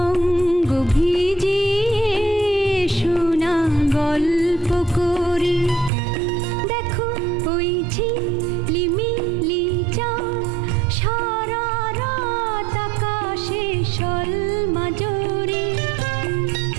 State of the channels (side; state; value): left; drops out; at 5.9 s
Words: অঙ্গ ভিজিয়ে এসো না গল্প করি। দেখো ওই ঝিলিমিলি চাঁদ সারা রাত আকাশে সলমাজরি।